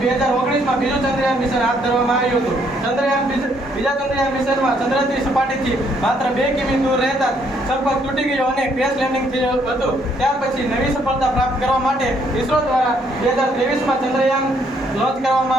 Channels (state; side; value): normal; both; correlation 0.69